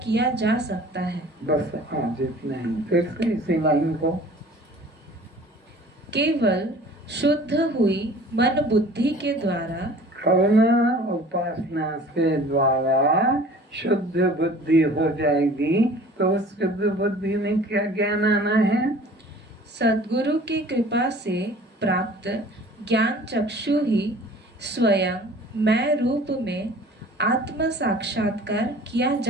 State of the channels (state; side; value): normal; both; correlation 0.47